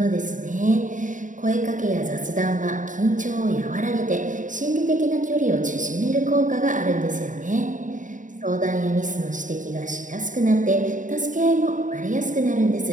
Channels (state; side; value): late; left; 0.37 ms